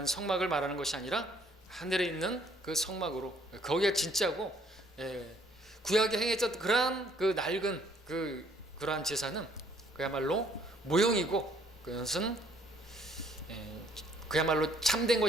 성막을 말하는 것이 아니라 하늘에 있는 그 성막으로, 거기가 진짜고 구약에 행했던 그러한 그 낡은 그러한 제사는 그야말로 모형이고 그것은 그야말로 참된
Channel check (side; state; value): both; normal; correlation 0.62